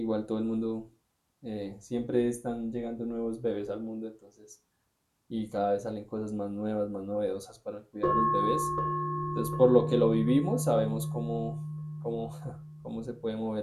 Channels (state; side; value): identical; both; correlation 1.00